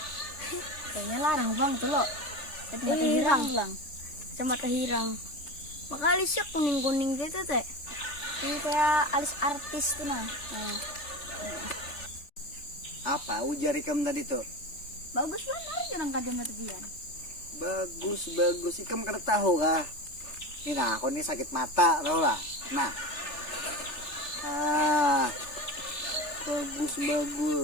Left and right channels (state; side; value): late; right; 3.4 ms